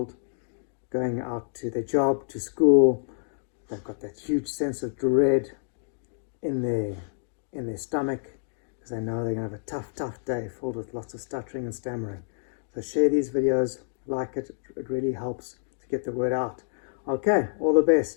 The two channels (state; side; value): silent; right; digital silence